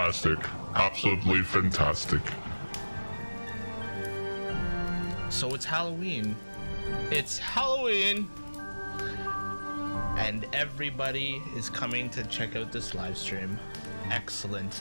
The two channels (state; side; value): inverted; both; correlation -1.00